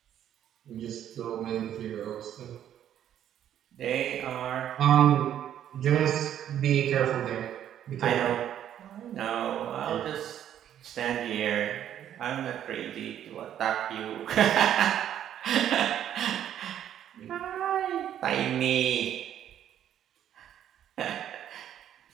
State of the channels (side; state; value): left; quieter; 10.5 dB